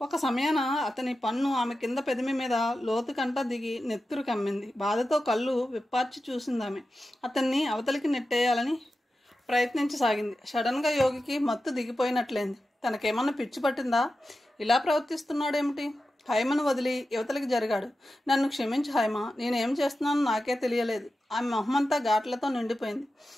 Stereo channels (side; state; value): both; normal; correlation 0.92